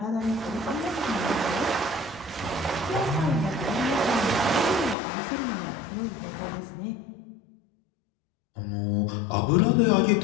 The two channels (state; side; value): drops out; right; at 5.0 s